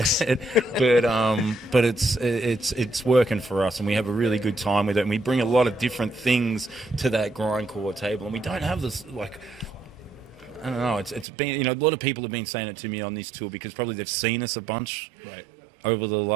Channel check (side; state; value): left; drops out; at 11.2 s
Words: it's working for us, and we have a really good time with it, and we bring a lot of different things to that grindcore table, and we don't have this I don't know. It's been, a lot of people have been saying it to me on this tour, because probably they've seen us a bunch. Right. over the